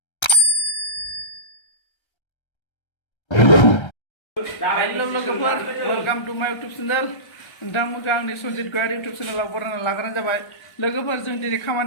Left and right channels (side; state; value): right; late; 1.3 ms